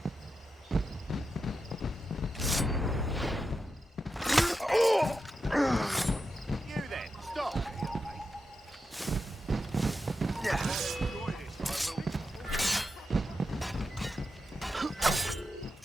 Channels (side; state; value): both; normal; correlation 0.88